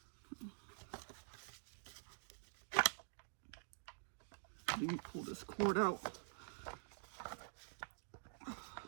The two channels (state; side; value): silent; left; digital silence